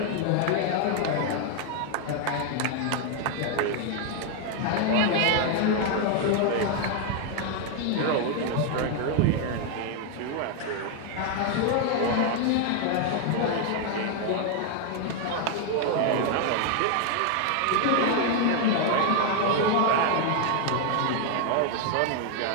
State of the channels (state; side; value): different; both; correlation 0.01